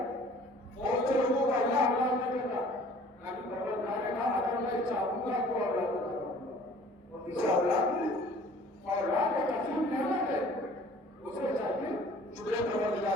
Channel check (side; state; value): both; normal; correlation 0.51